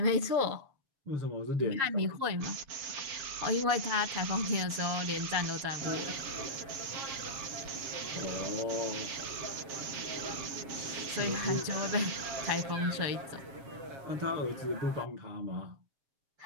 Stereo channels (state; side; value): late; left; 7.3 ms